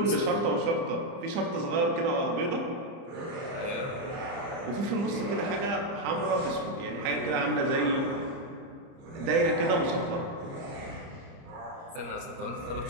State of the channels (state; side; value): late; left; 30 ms